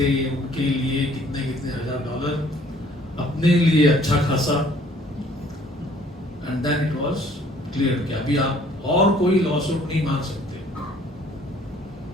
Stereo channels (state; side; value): normal; both; correlation 0.58